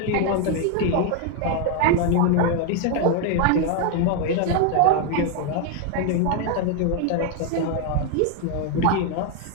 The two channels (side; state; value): both; different; correlation 0.01